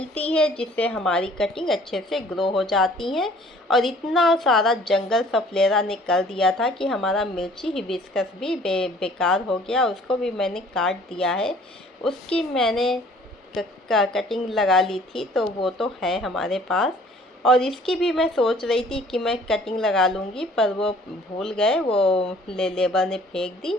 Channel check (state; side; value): normal; both; correlation 0.54